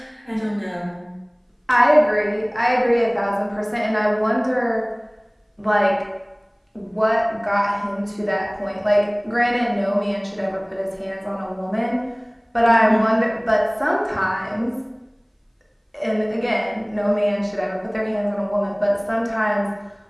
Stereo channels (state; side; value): identical; both; correlation 1.00